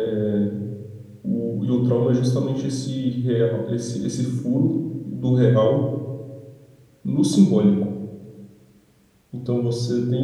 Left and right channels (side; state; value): both; identical; correlation 1.00